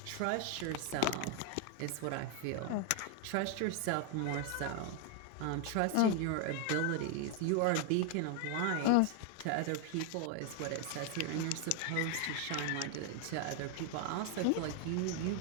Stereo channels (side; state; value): both; different; correlation 0.01